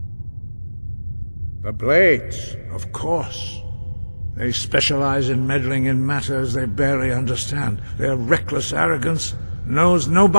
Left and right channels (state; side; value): inverted; both; correlation -1.00